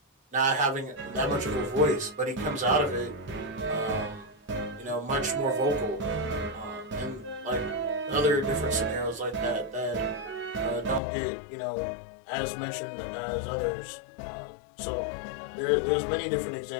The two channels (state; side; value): drops out; right; at 11.0 s